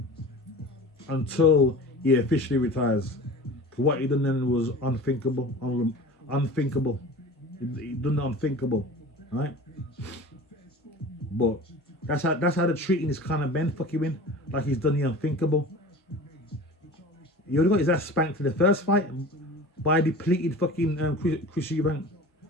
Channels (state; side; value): normal; both; correlation 0.38